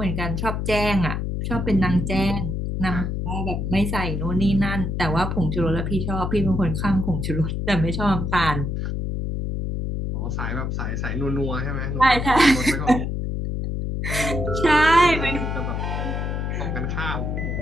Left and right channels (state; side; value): noise; left; hum, 2 dB below the sound